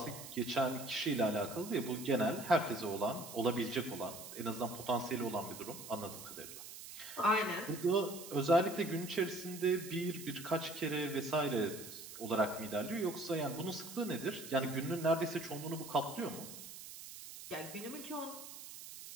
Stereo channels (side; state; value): right; noise; hiss, 12 dB below the sound